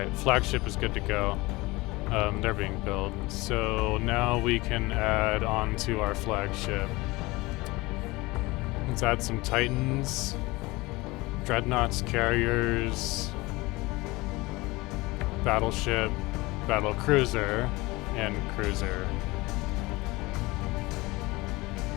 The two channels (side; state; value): right; quieter; 22.0 dB